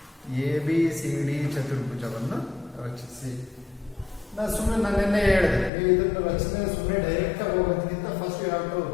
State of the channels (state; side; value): drops out; right; at 5.7 s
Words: ರಚಿಸಿ. ನಾನು ನಿನ್ನೆ ಹೇಳಿದೆ, ನೀವು ಇದನ್ನು ರಚನೆ ಸುಮ್ಮನೆ ಡೈರೆಕ್ಟ್ ಆಗಿ ಹೋಗೋದಕ್ಕಿಂತ first you have to